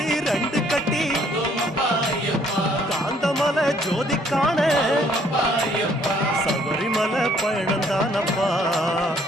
2 கட்டி காந்தமலை ஜோதி காண சபரிமலை பயணம் தானப்பா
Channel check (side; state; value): both; normal; correlation 0.64